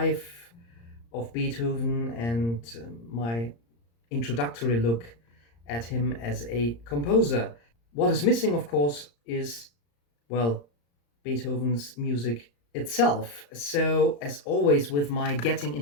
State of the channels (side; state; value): right; late; 35 ms